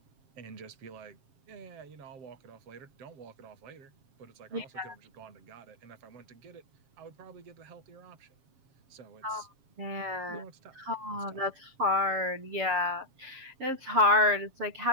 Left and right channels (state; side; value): late; left; 7.4 ms